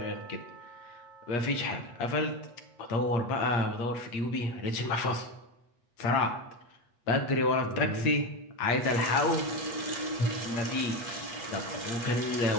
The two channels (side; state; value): right; late; 8.4 ms